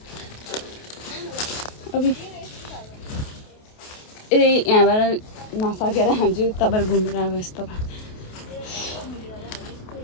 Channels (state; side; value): late; right; 28 ms